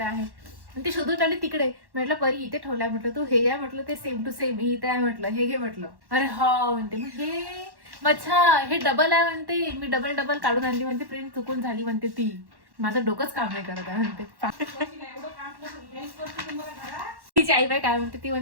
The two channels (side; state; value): left; late; 1.1 ms